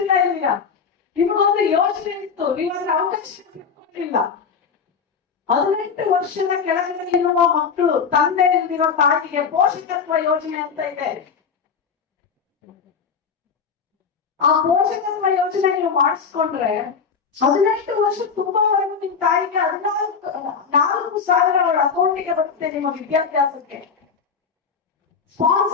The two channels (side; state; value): right; quieter; 6.0 dB